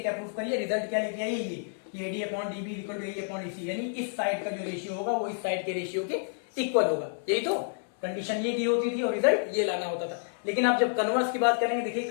प्रूफ करिए? रिजल्ट क्या लेके आइए? ये AD upon DB is equal to AE upon EC, यानी इस साइड का जो रेशियो होगा वो इस साइड के रेशियो के इक्वल होगा। यही तो कंडीशन ये दी होती थी और रिजल्ट ये लाना होता था। लेकिन आप जब कन्वर्स की बात करेंगे, देखिए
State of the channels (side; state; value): right; silent; 58 dB below the other